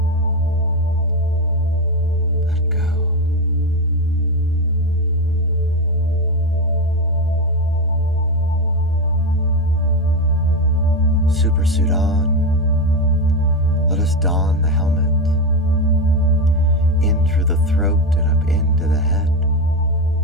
Let go. Supersuit on. Let us don the helmet. In through the throat and up into the head.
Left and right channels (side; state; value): both; normal; correlation 0.12